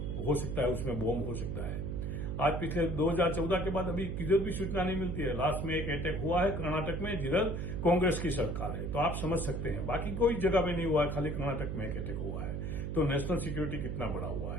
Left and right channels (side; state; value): right; noise; hum, 3 dB below the sound